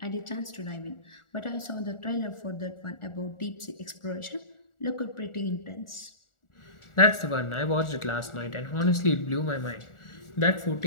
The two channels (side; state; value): right; late; 1.4 ms